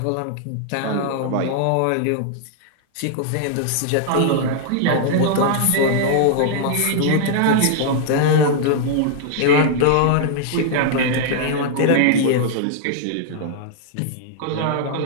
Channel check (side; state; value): both; different; correlation -0.01